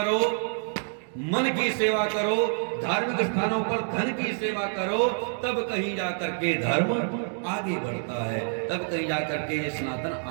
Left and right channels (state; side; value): silent; left; 60 dB below the other